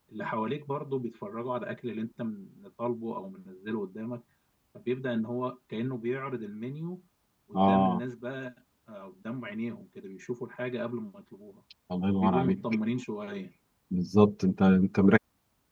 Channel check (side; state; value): both; identical; correlation 1.00